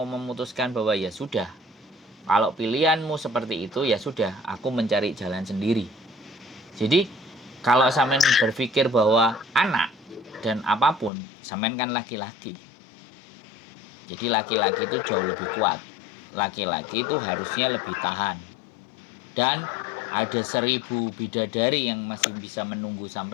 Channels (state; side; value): drops out; right; at 11.1 s